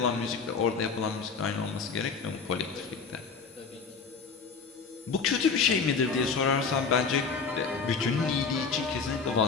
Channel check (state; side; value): quieter; right; 5.3 dB